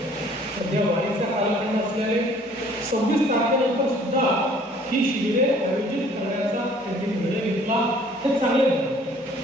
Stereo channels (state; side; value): normal; both; correlation 0.56